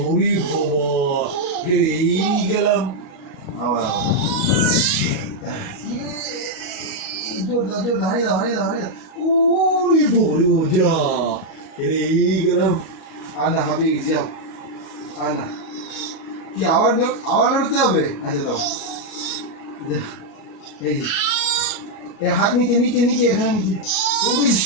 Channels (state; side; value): late; right; 38 ms